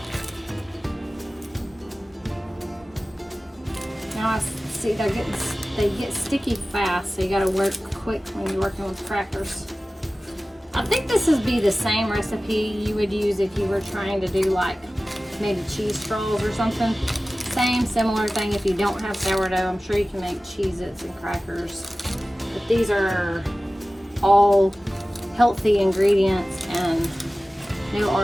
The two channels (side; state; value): both; normal; correlation 0.96